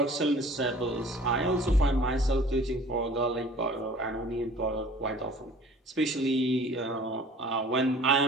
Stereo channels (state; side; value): normal; both; correlation 0.49